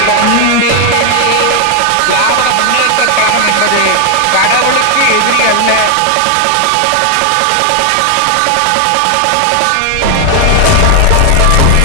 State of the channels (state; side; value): different; both; correlation 0.01